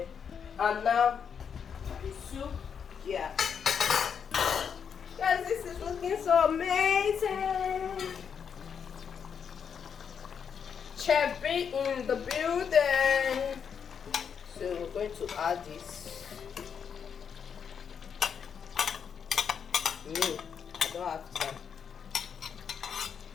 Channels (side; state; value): right; quieter; 7.1 dB